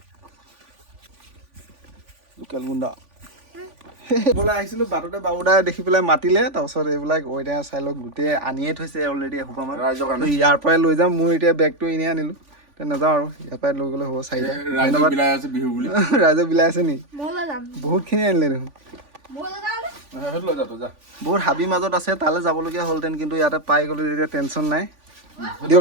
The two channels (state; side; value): late; left; 3.5 ms